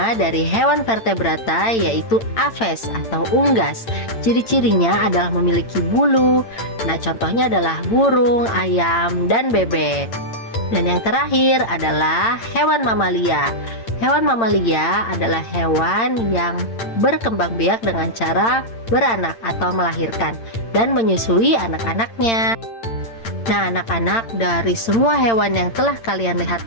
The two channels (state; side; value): late; right; 8.8 ms